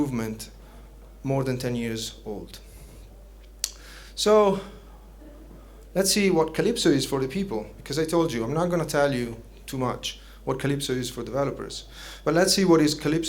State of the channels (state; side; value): identical; both; correlation 1.00